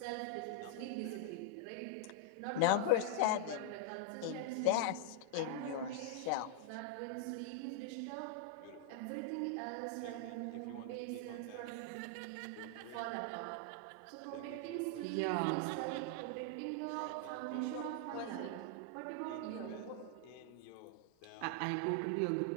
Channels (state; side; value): different; both; correlation -0.01